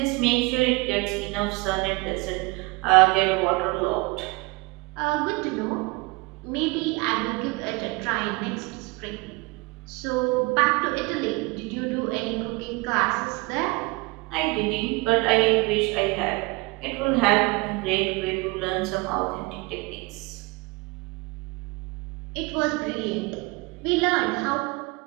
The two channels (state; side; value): quieter; left; 25.6 dB